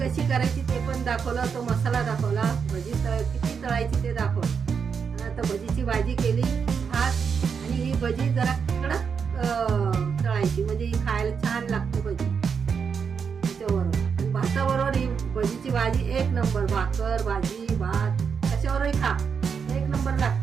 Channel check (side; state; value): left; quieter; 6.3 dB